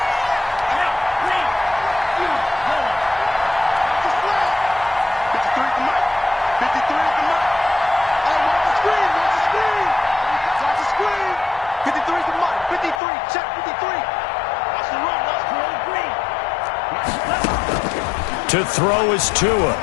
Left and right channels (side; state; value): right; drops out; at 13.0 s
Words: To throw is Tua.